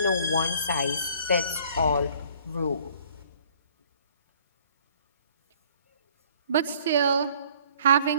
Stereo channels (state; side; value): inverted; both; correlation -0.57